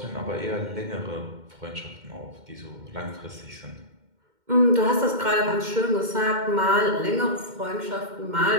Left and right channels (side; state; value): left; late; 2.1 ms